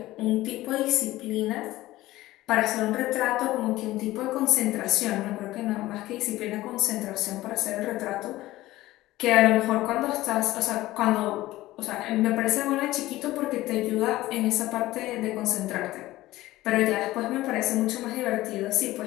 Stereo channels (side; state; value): right; quieter; 16.9 dB